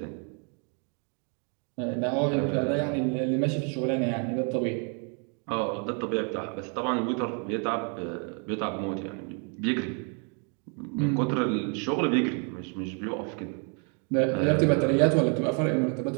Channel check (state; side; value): quieter; left; 39.2 dB